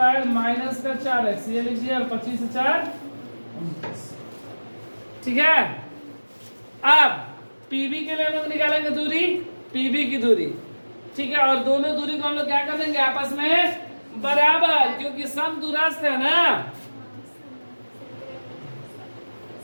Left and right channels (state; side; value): inverted; both; correlation -1.00